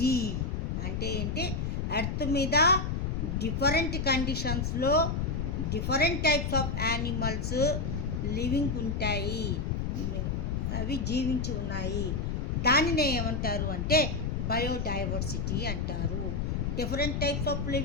అంటే ఏంటి? ఎర్త్ మీద డిఫరెంట్ కండిషన్స్లో different types of animals living ఉంటాయి, అవి జీవించి ఉన్నాయి. దానినే ఏమంటారు అంటే బయోడైవర్సిటీ అంటారు. Different types of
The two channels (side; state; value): left; noise; rumble, 2 dB below the sound